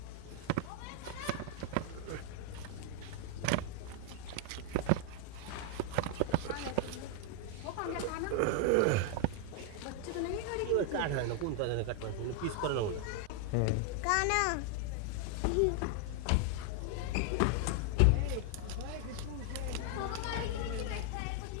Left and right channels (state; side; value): different; both; correlation 0.00